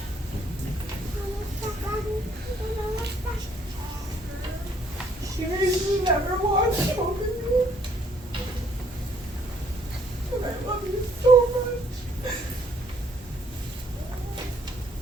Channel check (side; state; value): both; normal; correlation 0.65